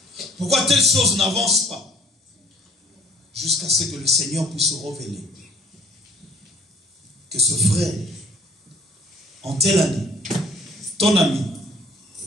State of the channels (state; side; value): normal; both; correlation 0.55